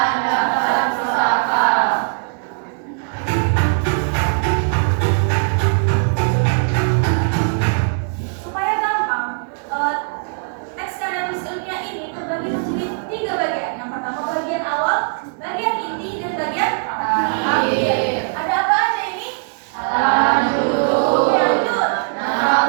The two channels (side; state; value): left; silent; 62 dB below the other